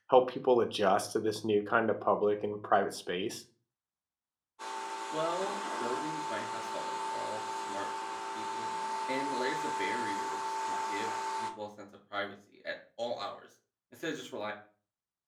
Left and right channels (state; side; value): identical; both; correlation 1.00